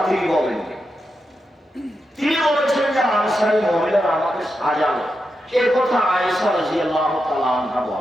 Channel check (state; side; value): normal; both; correlation 0.87